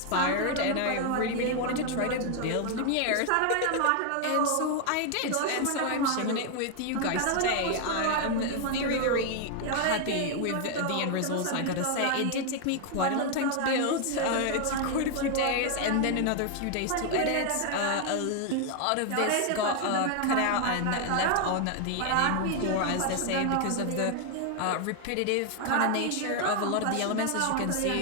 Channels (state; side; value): different; both; correlation 0.00